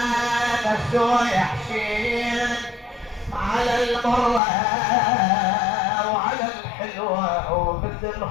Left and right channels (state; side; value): drops out; right; at 4.4 s